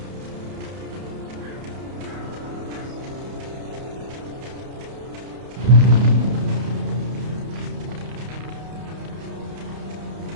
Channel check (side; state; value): left; late; 31 ms